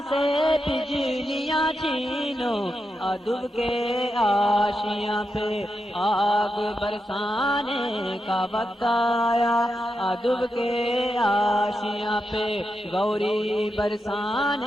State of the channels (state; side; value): normal; both; correlation 0.87